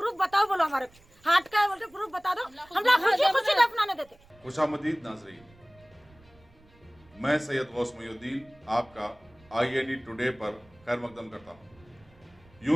बताओ, बोलो हमारे हार्ट का है, बोलते प्रूफ बता दो, हम लोग खुशी दफनाने देते। खुशामदीद नाज़रीन, मैं सैयद गौस मुहीउद्दीन आपका IND टुडे पर खैर मकदम करता हूँ।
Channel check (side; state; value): right; noise; rumble, 28 dB below the sound